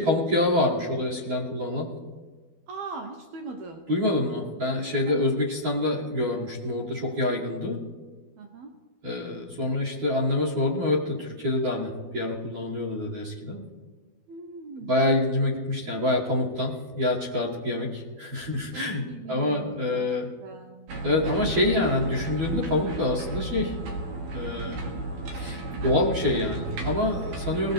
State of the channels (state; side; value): late; left; 12 ms